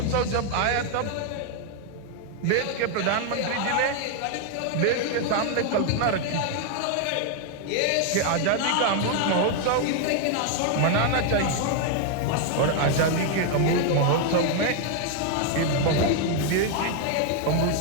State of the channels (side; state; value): both; different; correlation 0.00